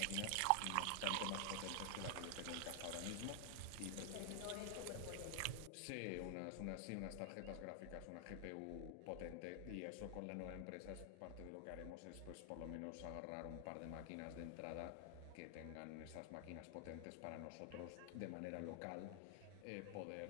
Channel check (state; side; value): different; both; correlation 0.00